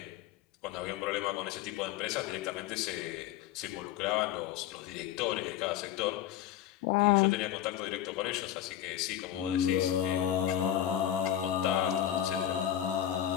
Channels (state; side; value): quieter; right; 11.3 dB